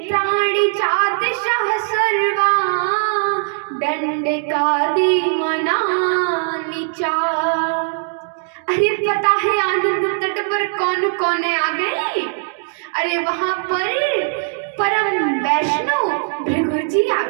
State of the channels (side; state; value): left; silent; digital silence